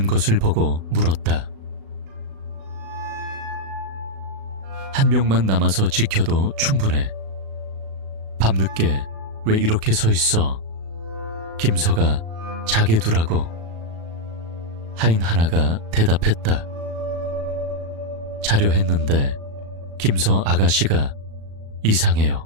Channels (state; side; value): late; left; 36 ms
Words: 것을 보고 물었다. 한 명만 남아서 지켜도 충분해. 밤늦게 왜 이렇게 서 있어? 김서가 자게 두라고. 하인 하나가 대답했다. 자려 했는데 김서 아가씨가